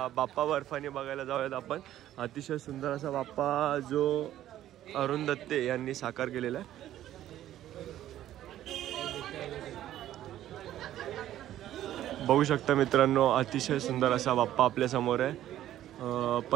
बाप्पा बर्फानी बघायला जाऊयात आपण. अतिशय सुंदर असा बाप्पा जो अरुण दत्ते यांनी साकार केलेला आहे. बघू शकता मित्रांनो, अतिशय सुंदर असा बाप्पा आपल्या समोर आहे.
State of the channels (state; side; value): quieter; left; 12.7 dB